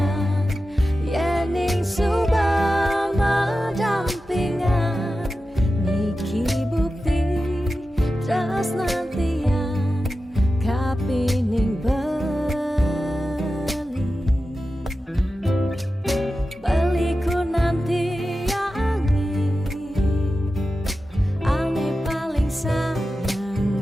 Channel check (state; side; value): normal; both; correlation 0.93